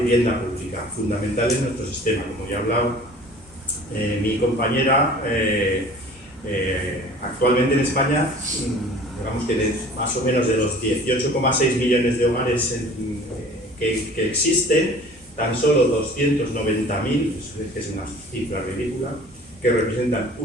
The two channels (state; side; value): normal; both; correlation 0.46